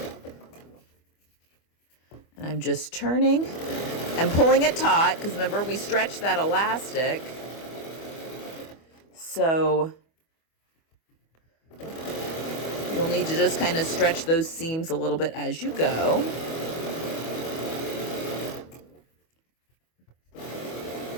And I'm just turning and pulling it taut, because remember, we stretched that elastic. So you'll need to just kind of stretch those seams a little bit as you go.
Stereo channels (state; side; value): late; right; 25 ms